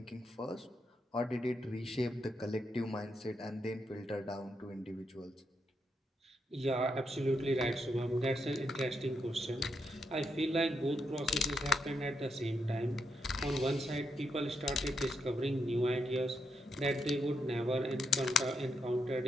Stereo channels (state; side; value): normal; both; correlation 0.81